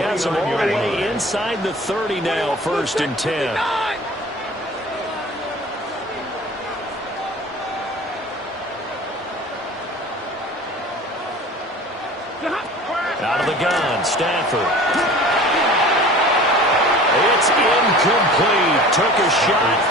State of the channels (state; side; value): normal; both; correlation 0.42